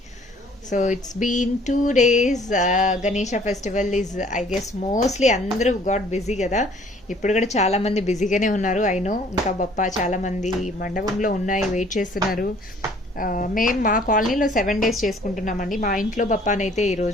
So it's been 2 days. Ganesha festival is I guess mostly అందరూ గాట్ బిజీ కదా. ఇప్పుడు కూడా చాలా మంది బిజీగానే ఉన్నారు. ఐ నో ఇంకా బప్ప చాలా మంది మండపంలో ఉన్నాయి, వెయిట్ చేస్తున్నారు. మేము మా కాలనీలో 7 days చేసుకుంటున్నామండి. మా ఇంట్లో బప్పానైతే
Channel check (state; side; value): normal; both; correlation 0.57